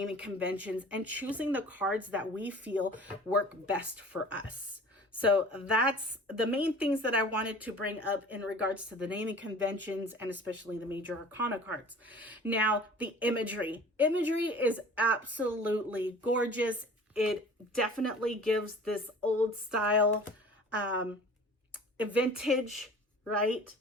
conventions and choosing the cards that we feel work best for us. So that's the main things that I wanted to bring up in regards to the naming conventions and especially the major arcana cards. Now, the imagery. Imagery is absolutely gorgeous. It definitely gives this old style, vintage, right?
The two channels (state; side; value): normal; both; correlation 0.44